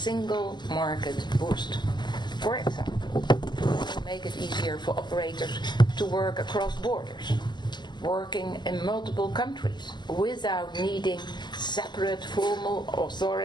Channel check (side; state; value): right; late; 0.21 ms